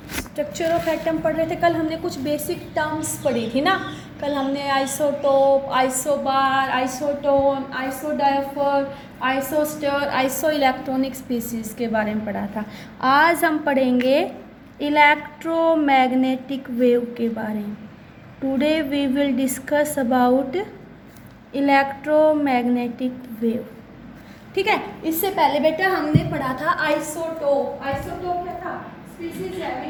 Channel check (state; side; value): identical; both; correlation 1.00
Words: ऑफ एटम पढ़ रहे थे। कल हमने कुछ बेसिक टर्म्स पढ़ी थी ना। कल हमने isotope, isobar, isotone, isodiaphere, isostere, iso electronic species के बारे में पढ़ा था। आज हम पढ़ेंगे इलेक्ट्रोमैग्नेटिक वेव के बारे में। Today we will discuss about electromagnetic wave. ठीक है। इससे पहले बेटा हमने पढ़ा था आइसोटोप। आइसोटोप क्या था? Species